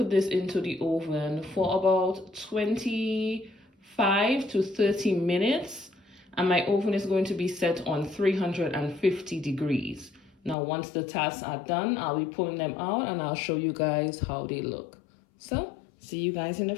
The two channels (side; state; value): right; drops out; at 10.6 s